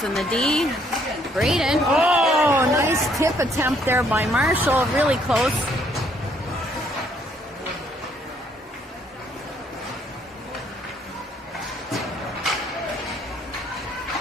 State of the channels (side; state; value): both; normal; correlation 0.67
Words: the D. Braden. Oh, nice tip attempt there by Marshall. Really close.